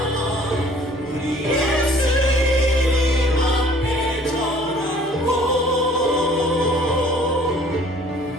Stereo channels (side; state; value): both; normal; correlation 0.54